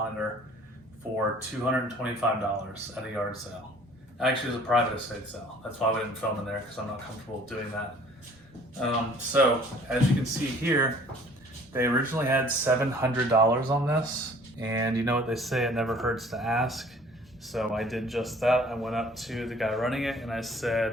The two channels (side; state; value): both; normal; correlation 0.52